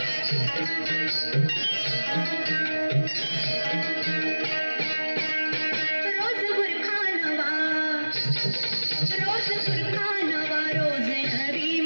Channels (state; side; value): inverted; both; correlation -1.00